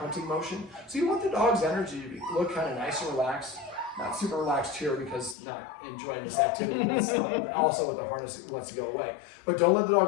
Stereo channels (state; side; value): drops out; right; at 5.4 s